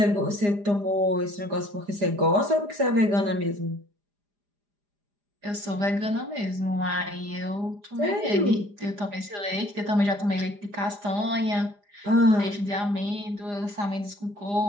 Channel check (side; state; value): left; late; 4.9 ms